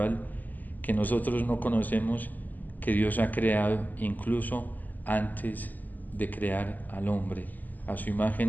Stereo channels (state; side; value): late; right; 0.084 ms